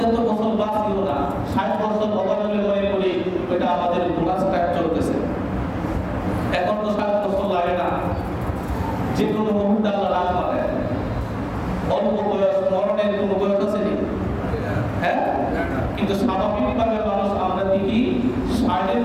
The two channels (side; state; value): both; identical; correlation 1.00